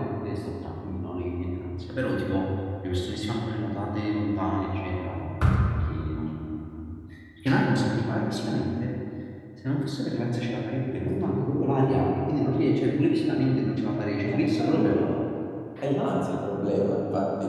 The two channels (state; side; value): identical; both; correlation 1.00